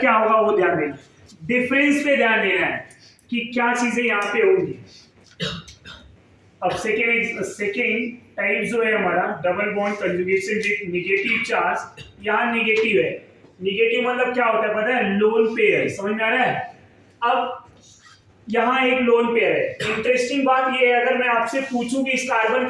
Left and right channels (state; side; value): identical; both; correlation 1.00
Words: क्या होगा वो ध्यान देना, डिफरेंस पे ध्यान देना है कि क्या चीजें यहाँ पे होंगी। अब सेकेंड टाइप जो है हमारा double bond conjugation with negative charge, यहाँ नेगेटिव है। नेगेटिव मतलब क्या होता है पता है, लोन पेयर, समझ में आ रहा है। अब यहाँ एक लोन पेयर है। इंटरेस्टिंग बात ये है, अगर मैं आपसे पूछूं कि इस कार्बन